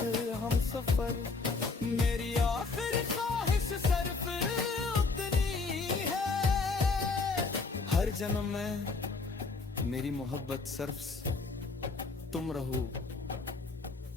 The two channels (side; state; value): right; quieter; 4.1 dB